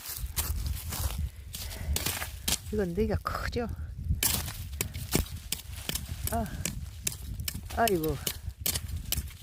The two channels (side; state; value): both; identical; correlation 1.00